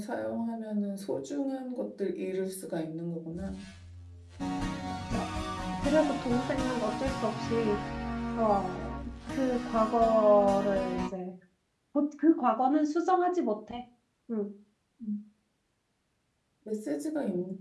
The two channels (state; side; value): identical; both; correlation 1.00